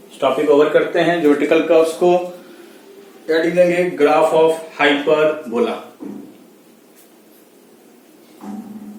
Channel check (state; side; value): identical; both; correlation 1.00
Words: इस टॉपिक ओवर करते हैं। ज्योमेट्रिकल कर्व्स को हेडिंग देंगे ग्राफ ऑफ हाइपरबोला।